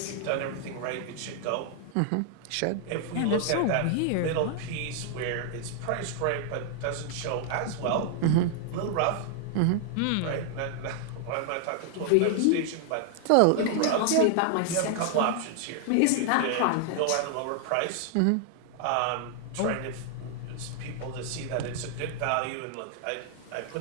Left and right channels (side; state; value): both; different; correlation 0.00